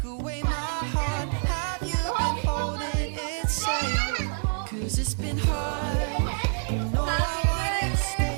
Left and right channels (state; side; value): silent; left; digital silence